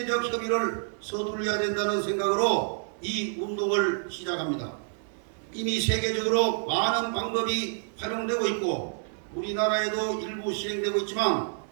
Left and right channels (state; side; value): silent; left; 59 dB below the other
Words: 협의를 서둘러야 된다는 생각으로 이 운동을 시작합니다. 이미 세계적으로 많은 방법이 활용되고 있고 우리나라에도 일부 실행되고 있지만